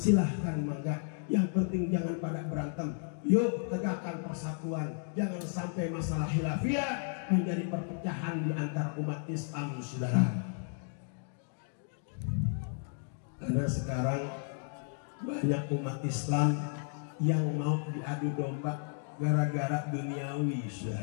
mangga. Yang penting jangan pada berantem. Yuk tegakkan persatuan, jangan sampai masalah khilafiyah menjadi perpecahan di antara umat Islam, saudara. Karena sekarang banyak umat Islam yang mau diadu domba gara-gara duniawi,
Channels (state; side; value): silent; right; 56 dB below the other